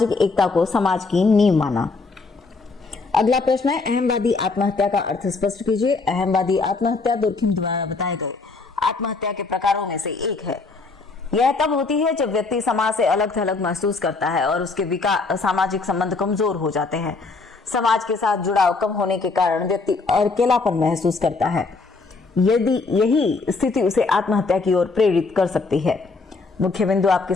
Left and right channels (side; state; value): right; quieter; 4.0 dB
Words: एकता को समाज की नींव माना। अगला प्रश्न है, अहमवादी आत्महत्या का अर्थ स्पष्ट कीजिए। अहमवादी आत्महत्या दुर्खिम द्वारा बताए गए आत्महत्या के प्रकारों में से एक है। यह तब होती है जब व्यक्ति समाज से अलग थलग महसूस करता है और उसके सामाजिक संबंध कमजोर हो जाते हैं। समाज के साथ जुड़ाव कम होने के कारण व्यक्ति अकेलापन महसूस करता है। यदि यही स्थिति उसे आत्महत्या की ओर प्रेरित कर सकती है। मुख्य बिंदु आपके